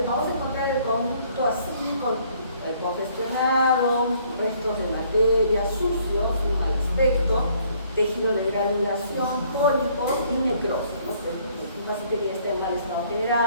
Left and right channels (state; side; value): inverted; both; correlation -0.63